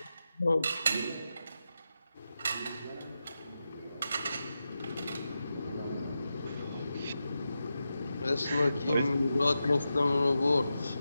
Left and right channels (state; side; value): inverted; both; correlation -0.89